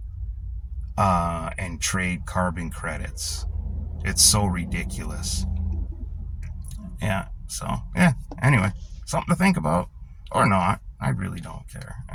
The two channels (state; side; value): identical; both; correlation 1.00